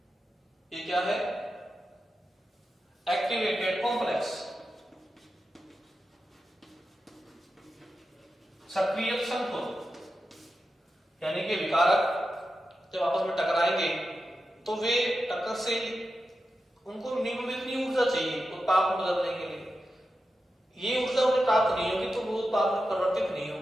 ये क्या है, एक्टिवेटेड कॉम्प्लेक्स, सक्रिय संकुल, यानी कि विकारक जब आपस में टकराएंगे तो वे टक्कर से उनको मिनिमम इतनी ऊर्जा चाहिए उत्पाद में बदलने के लिए, ये ऊर्जा उन्हें प्राप्त नहीं होगी तो वो उत्पाद में परिवर्तित नहीं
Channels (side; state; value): both; normal; correlation 0.90